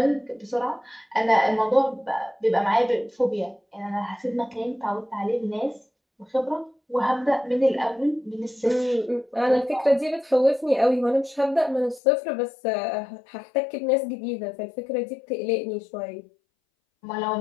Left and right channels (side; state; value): right; drops out; at 12.0 s